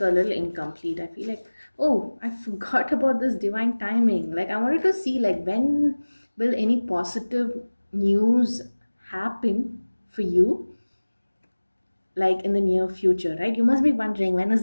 a little incomplete. I feel like, oh, I forgot about this divine timing. Like, I wanted to see, like, when will any positive news happen for you, like in the near future, right? You must be wondering, when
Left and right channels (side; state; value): both; inverted; correlation -1.00